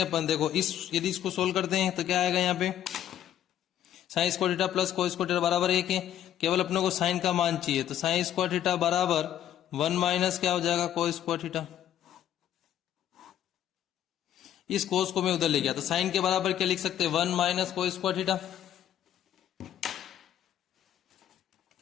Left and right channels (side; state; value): right; quieter; 11.1 dB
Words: देखो इस यदि इसको सोल्व करते हैं तो क्या आएगा यहाँ पे sign square theta plus cos square theta बराबर 1 है। केवल अपने को साइन का मान चाहिए तो साइन स्क्वायर थीटा बराबर 1 माइनस क्या हो जाएगा कोस स्क्वायर थीटा। इस कोस को मैं उधर ले गया तो साइन के बराबर क्या लिख सकते हैं 1 माइनस कोस स्क्वायर थीटा